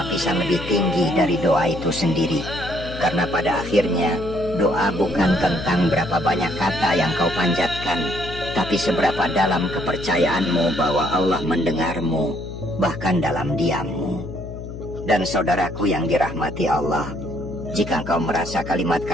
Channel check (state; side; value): noise; left; hum, 10 dB below the sound